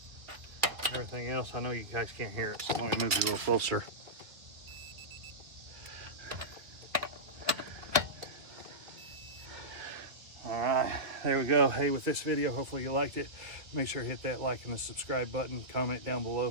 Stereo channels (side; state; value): left; late; 1.9 ms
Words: Everything else, I know you guys can't hear it, so let me move you a little closer. All right, there we go. Hey, with this video, hopefully you liked it. Make sure to hit that like and the subscribe button. Comment down below